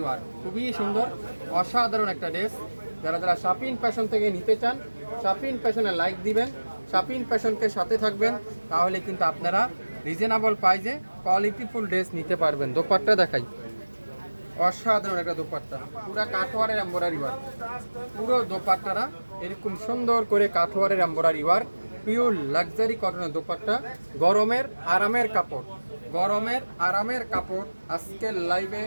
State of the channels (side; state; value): both; inverted; correlation -1.00